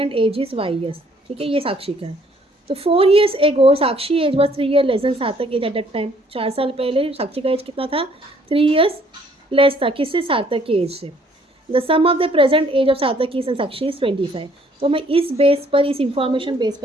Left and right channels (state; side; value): normal; both; correlation 0.62